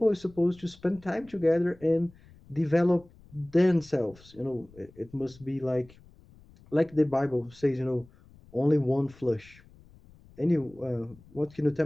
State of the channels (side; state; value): left; noise; rumble, 25 dB below the sound